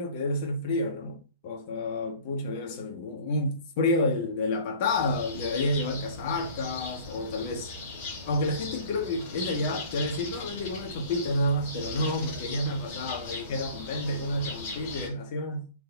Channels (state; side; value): inverted; both; correlation -0.47